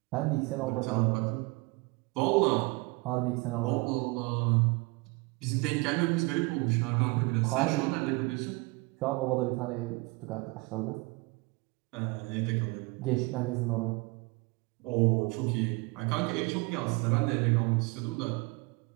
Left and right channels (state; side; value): quieter; left; 25.9 dB